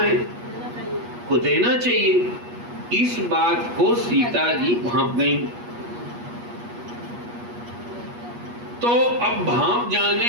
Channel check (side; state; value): left; late; 8.3 ms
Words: को देना चाहिए। इस बात को सीता जी भांप गई। तो अब भांप